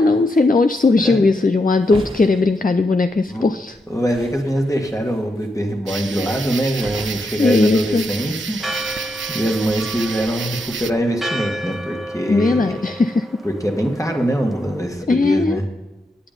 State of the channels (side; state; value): both; normal; correlation 0.82